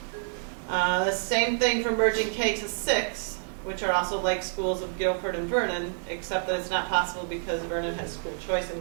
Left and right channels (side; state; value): left; silent; digital silence